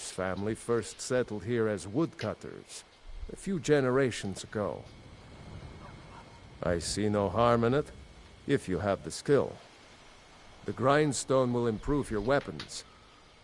family first settled here as woodcutters a few generations ago. I see no harm in it, if you have the skill. The grindstone will improve your weapons.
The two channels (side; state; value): both; identical; correlation 1.00